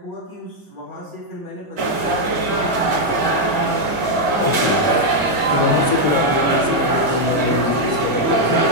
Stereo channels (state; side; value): late; left; 2.1 ms